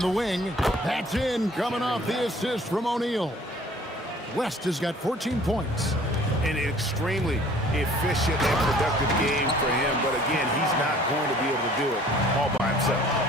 wing. That's in, coming off the assist from O'Neal. West has got 14 points. An extremely efficient and productive game for him, but again, he's not going to be able to do it all by himself.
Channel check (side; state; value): both; normal; correlation 0.53